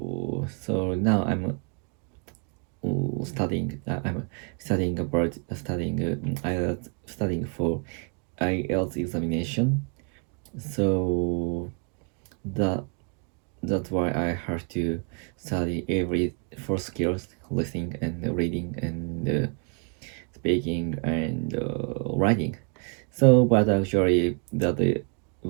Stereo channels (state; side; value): quieter; left; 37.1 dB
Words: now I'm studying about studying for IELTS examination. So that that's why I have to study every four skills: listening and reading and speaking and writing. So, but actually, but the